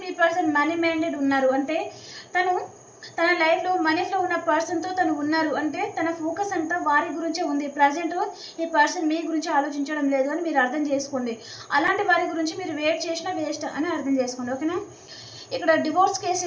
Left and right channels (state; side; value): identical; both; correlation 1.00